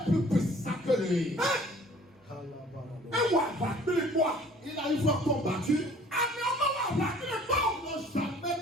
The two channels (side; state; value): both; normal; correlation 0.52